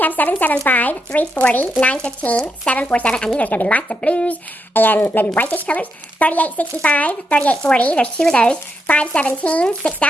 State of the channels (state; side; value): normal; both; correlation 0.81